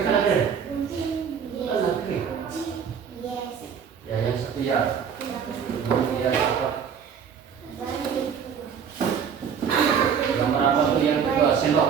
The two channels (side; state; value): left; quieter; 7.2 dB